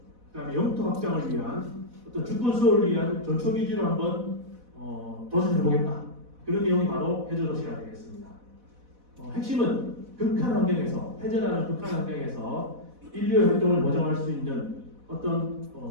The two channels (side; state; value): left; late; 4.1 ms